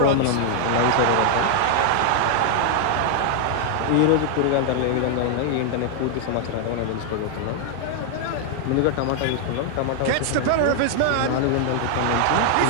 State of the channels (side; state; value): both; different; correlation 0.00